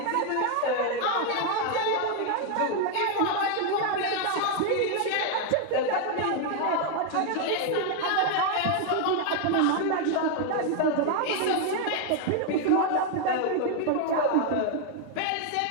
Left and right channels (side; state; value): both; different; correlation 0.00